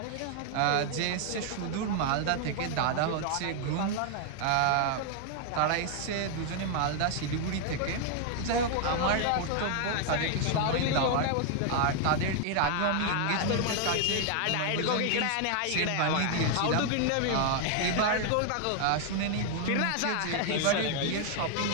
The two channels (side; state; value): both; different; correlation 0.00